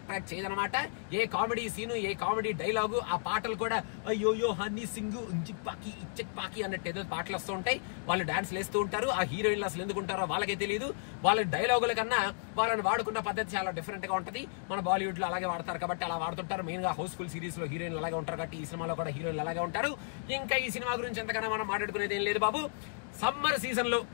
చేయదనమాట. ఏ కామెడీ సీను, ఏ కామెడీ డైలాగు, ఆ పాటలు కూడా అయ్యోయో హనీ సింగ్ పాకి ఇచ్చక్ పాకి అన్నట్టు ఏదో పాటలు వస్తూ ఉంటాయి. వాళ్ళు డాన్స్ వేస్తూ ఉంటారు. ఆ హీరోయిన్లు అసలు ఎందుకు ఉంటారో వాళ్ళకే తెలియదు. వాళ్ళ డైలాగుల కన్నా వాళ్ళని వాడుకున్న పద్ధతి చాలా డిఫరెంట్ గా ఉంటది. మన బాలీవుడ్ లో అలాగే వాడతారు కాబట్టి అలా వాడుతుంటారు. మెయిన్ గా హౌస్ఫుల్ సిరీస్ లో హీరోయిన్లు అలాగే ఉంటారు కాబట్టి ఈ సినిమాలో కూడా హీరోయిన్లు అలాగే ఉంటారు. ఇంకా ఈ సినిమా గురించి ఎంతకన్నా మనం మాట్లాడుకునేది ఏం లేదు బాబు. సమ్మర్ సీజన్ లో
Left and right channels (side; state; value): right; silent; digital silence